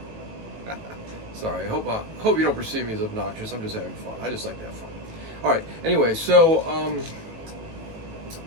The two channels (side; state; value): left; late; 18 ms